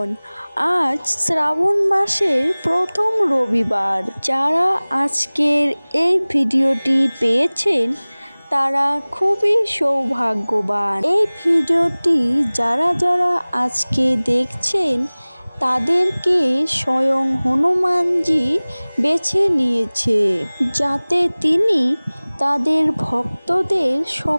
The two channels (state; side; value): inverted; both; correlation -1.00